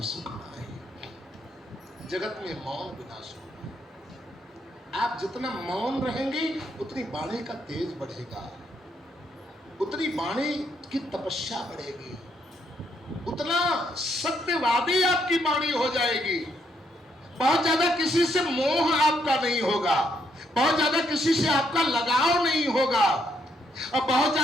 सुख नाहि। जगत में मौन बिना सुख नाहि। आप जितना मौन रहेंगे उतनी वाणी का तेज बढ़ेगा, उतनी वाणी की तपस्या बढ़ेगी, उतना सत्यवादी आपकी वाणी हो जाएगी। बहुत ज्यादा किसी से मोह आपका नहीं होगा, बहुत ज्यादा किसी से आपका लगाव नहीं होगा, और बहुत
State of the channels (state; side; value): normal; both; correlation 0.74